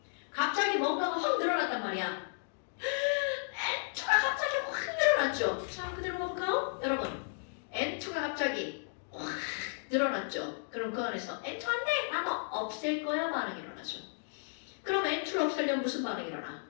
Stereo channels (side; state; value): right; silent; digital silence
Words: 갑자기 뭔가가 확 늘어났단 말이야. N2가 갑자기 확 늘어났죠? 자, 그대로 볼까요? 여러분, N2가 갑자기 확 늘어났죠? 그럼 그 안에서 N2 안 돼! 나도 없앨 거야 반응이 일어나죠. 그럼 N2를 없애려면 무슨 반응이 일어나?